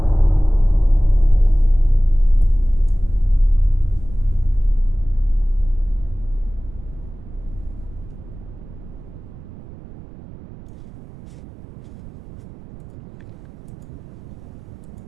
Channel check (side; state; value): right; noise; rumble, 18 dB below the sound